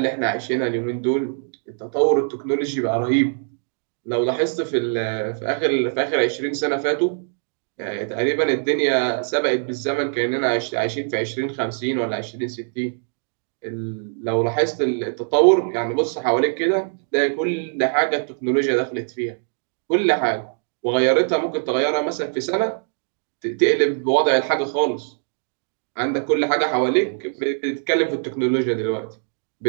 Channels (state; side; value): silent; left; digital silence